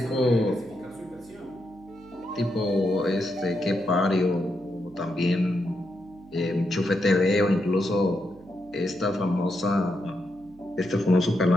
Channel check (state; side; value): noise; right; hum, 25 dB below the sound